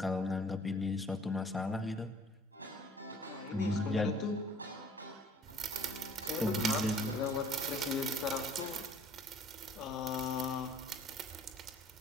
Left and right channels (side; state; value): both; normal; correlation 0.54